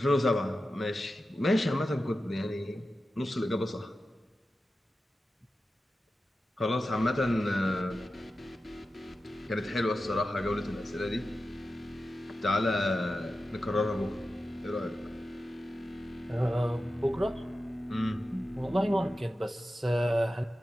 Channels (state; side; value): normal; both; correlation 0.93